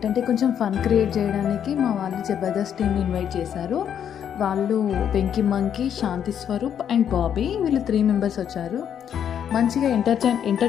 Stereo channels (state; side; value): quieter; right; 8.9 dB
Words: కొంచెం ఫన్ క్రియేట్ చేయడానికి మా వాళ్ళు జబర్దస్త్ టీమ్ని ఇన్వైట్ చేశారు. వాళ్ళు వెంకీ మంకీ, శాంతి స్వరూప్ అండ్ బాబీ, వీళ్ళు 3 మెంబర్స్ వచ్చారు. మంచిగా